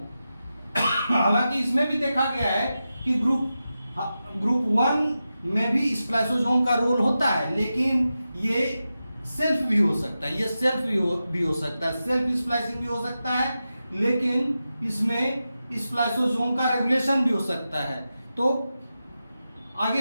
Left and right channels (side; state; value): both; inverted; correlation -0.91